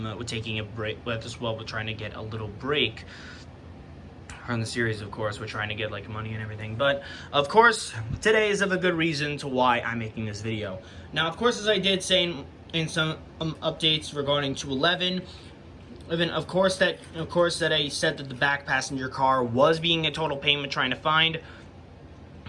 taking a break, with trying to get a little break from the series. Of course, we're trying to get like money and everything. But of course, today is of a good reason to why I'm making this video. Now, of course, as I did say in some updates regarding 211. Of course that I said that the back passenger car was being a total payment trying to find.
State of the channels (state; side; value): identical; both; correlation 1.00